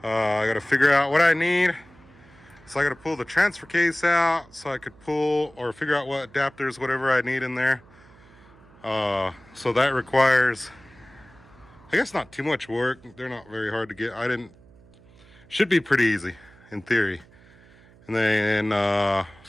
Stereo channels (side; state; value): right; noise; hum, 26 dB below the sound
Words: I got to figure out what I need. So I got to pull the transfer case out so I could pull or figure out what adapters, whatever I need in there. So that requires, I guess, not too much work. They're not very hard to get. Should be pretty easy in theory. And then